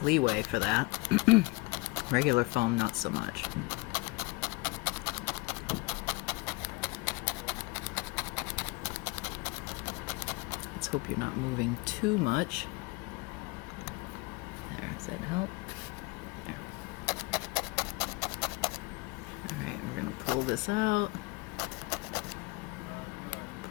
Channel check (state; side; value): quieter; right; 25.1 dB